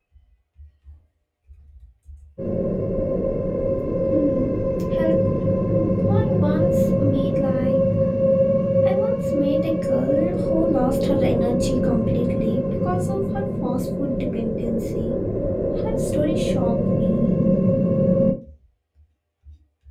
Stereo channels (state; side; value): identical; both; correlation 1.00